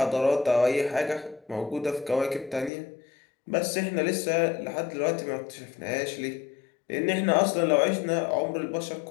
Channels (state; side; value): drops out; right; at 2.7 s